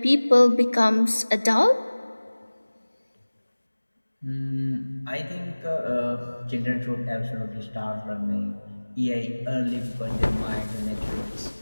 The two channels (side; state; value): both; inverted; correlation -1.00